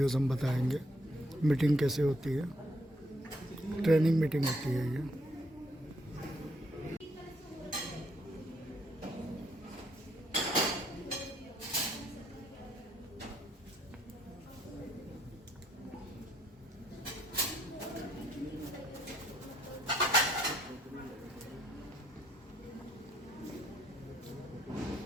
हम बताएंगे। मीटिंग कैसे होती है, ट्रेनिंग मीटिंग होती है ये।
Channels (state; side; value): normal; both; correlation 0.70